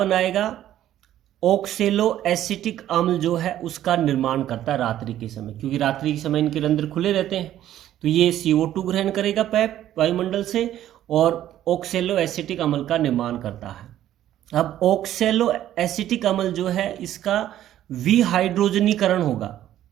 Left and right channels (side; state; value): left; quieter; 12.3 dB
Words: ऑक्सेलो एसिटिक अम्ल जो है उसका निर्माण करता है रात्रि के समय, क्योंकि रात्रि के समय इनके रंध्र खुले रहते हैं तो ये CO2 ग्रहण करेगा पैप वायुमंडल से और ऑक्सेलो एसिटिक अम्ल का निर्माण करता है। अब ऑक्सेलो एसिटिक अम्ल जो है इसका विहाइड्रोजनीकरण होगा